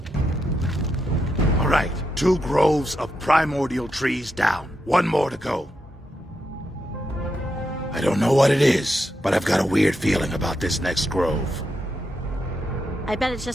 All right, 2 groves of primordial trees down. 1 more to go. I don't know what it is, but I've got a weird feeling about this next grove. I bet it's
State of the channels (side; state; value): both; normal; correlation 0.84